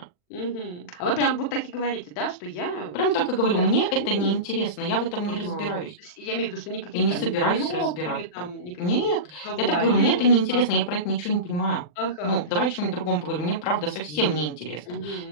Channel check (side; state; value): right; late; 40 ms